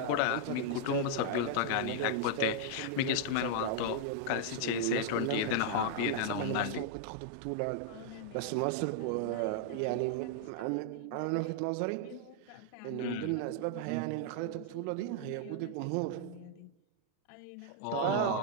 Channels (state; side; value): different; both; correlation -0.01